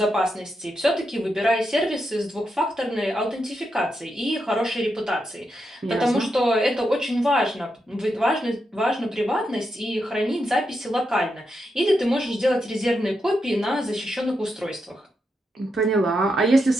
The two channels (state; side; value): normal; both; correlation 0.84